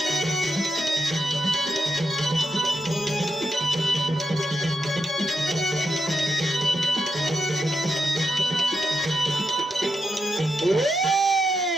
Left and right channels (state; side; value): normal; both; correlation 0.84